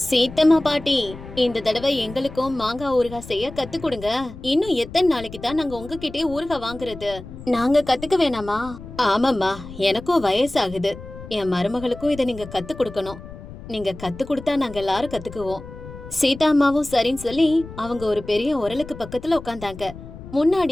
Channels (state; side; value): noise; left; rumble, 14 dB below the sound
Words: பாட்டி, இந்த தடவை எங்களுக்கும் மாங்காய் ஊறுகாய் செய்ய கத்து கொடுங்க. இன்னும் எத்தனை நாளைக்கு தான் நாங்க உங்ககிட்டயே ஊறுகாய் வாங்குறது? நாங்க கத்துக்க வேணாமா? ஆமாம்மா, எனக்கும் வயசாகுது. என் மருமகளுக்கும் இதை நீங்க கத்து கொடுக்கணும். நீங்க கத்து கொடுத்தா நாங்க எல்லாரும் கத்துக்குவோம். சீதாம்மாவும் சரின்னு சொல்லி அவங்க ஒரு பெரிய உரலுக்கு பக்கத்துல உட்கார்ந்தாங்க.